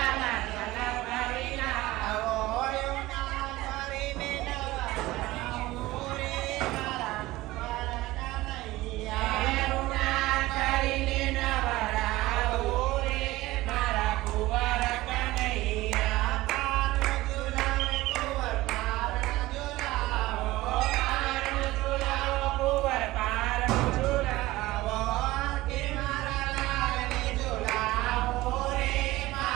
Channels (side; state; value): left; quieter; 18.2 dB